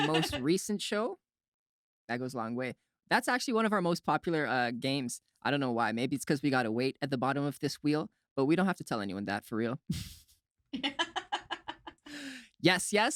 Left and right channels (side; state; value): both; identical; correlation 1.00